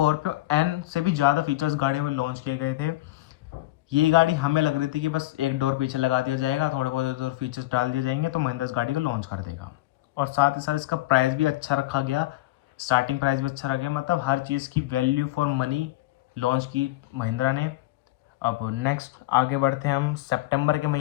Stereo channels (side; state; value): right; quieter; 17.7 dB